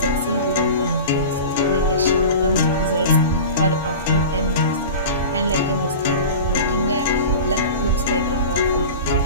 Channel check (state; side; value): inverted; both; correlation -0.34